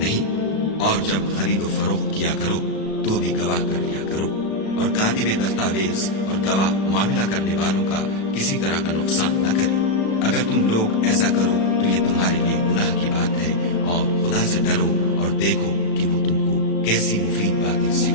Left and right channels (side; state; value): right; late; 36 ms